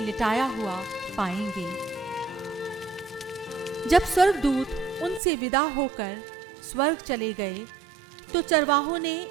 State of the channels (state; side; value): drops out; left; at 5.2 s